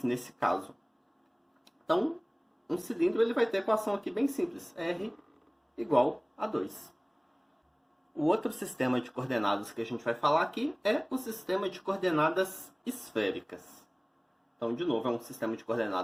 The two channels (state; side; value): identical; both; correlation 1.00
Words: nesse caso. Então, um cilindro ele vai ter a equação aqui bem simples, r igual a 2. O outro sistema de coordenadas que a gente vai falar aqui é o sistema de coordenadas esféricas. Então, de novo, é um sistema de